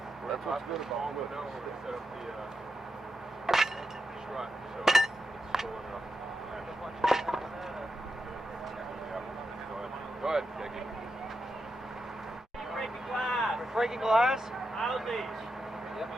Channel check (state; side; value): normal; both; correlation 0.86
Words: That's what's good about it. Set up the strut so it's full enough. Go ahead, take it. Breaking glass. Breaking glass? How's these? Yep.